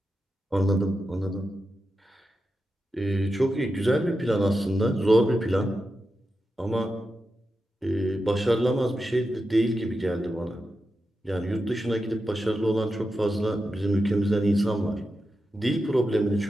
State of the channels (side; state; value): both; normal; correlation 0.89